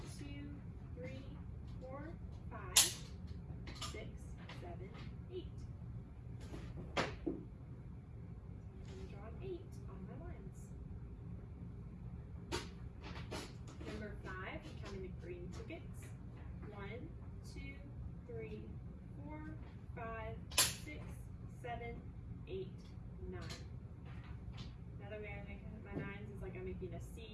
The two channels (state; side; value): identical; both; correlation 1.00